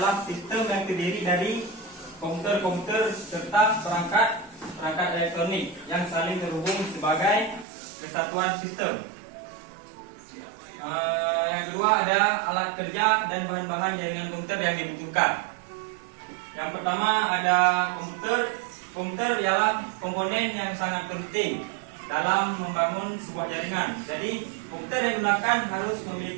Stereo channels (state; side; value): drops out; left; at 7.7 s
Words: sistem yang terdiri dari komputer-komputer serta perangkat elektronik yang saling terhubung sebagai kesatuan sistem. Yang kedua ada alat kerja dan bahan-bahan jaringan komputer yang dibutuhkan. Yang pertama ada komputer. Komputer ialah komponen yang sangat penting dalam membangun sebuah jaringan. Jadi komputer yang digunakan harus